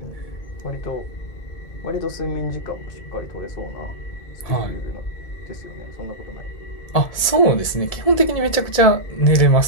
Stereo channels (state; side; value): late; right; 1.8 ms